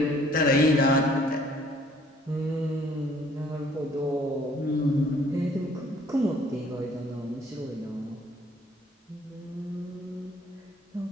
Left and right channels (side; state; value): both; normal; correlation 0.59